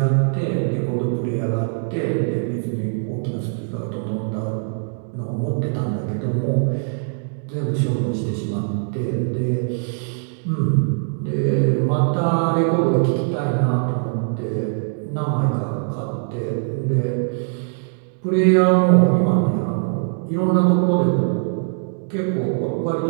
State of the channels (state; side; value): silent; left; digital silence